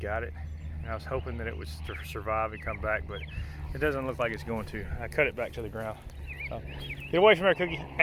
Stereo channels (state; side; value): identical; both; correlation 1.00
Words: it. And I was hoping that it would survive and come back, but it doesn't look like it's going to. I cut it back to the ground. Get away from her, Cookie.